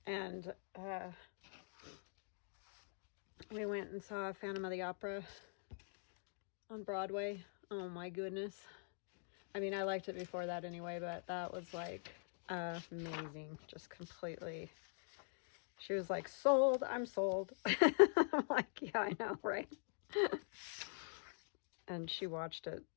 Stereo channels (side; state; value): right; silent; digital silence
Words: And we went and saw Phantom of the Opera on Broadway. Oh my goodness. I mean, I liked it before that anyway, but that was like amazing. Just completely. She was like, sold, I'm sold. I'm like, yeah, I know, right? And she watched it,